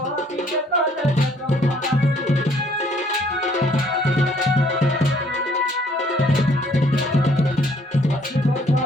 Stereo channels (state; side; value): normal; both; correlation 0.62